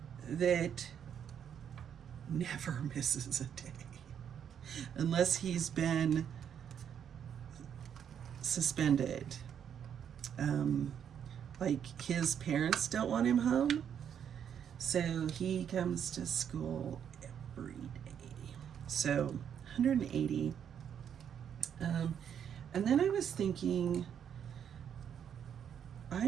that never misses a day unless he's been suspended. Like his parents don't want him home, so he comes to school every day. So 180. And then I was thinking,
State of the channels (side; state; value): left; quieter; 8.5 dB